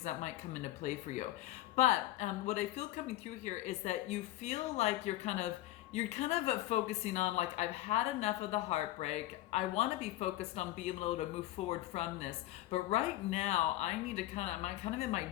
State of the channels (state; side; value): quieter; right; 15.6 dB